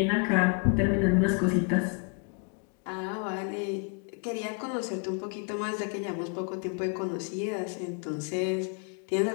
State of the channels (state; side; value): quieter; right; 35.0 dB